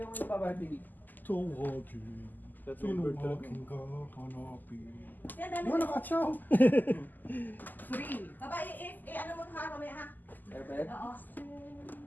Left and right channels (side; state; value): right; late; 0.086 ms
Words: yung babati? Tawagin. Tunuwagin ka, hanapin. Yan, dami. Wala ka, chow. 3. Baba, ano mo ha, mamaya ha? Perfect. Oo.